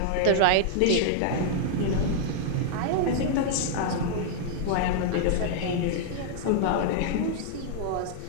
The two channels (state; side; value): different; both; correlation -0.01